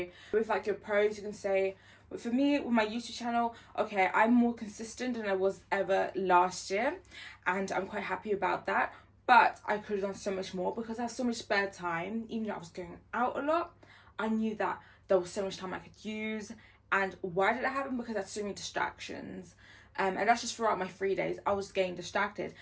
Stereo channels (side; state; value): both; identical; correlation 1.00